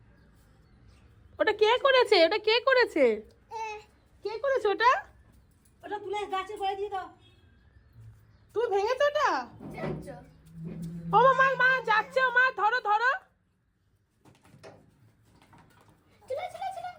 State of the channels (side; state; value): both; identical; correlation 1.00